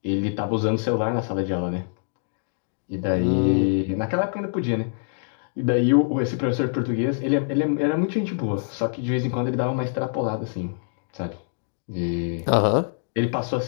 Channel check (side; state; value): right; silent; digital silence